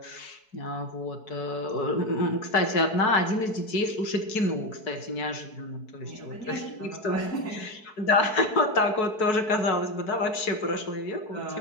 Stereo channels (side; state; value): right; late; 4.6 ms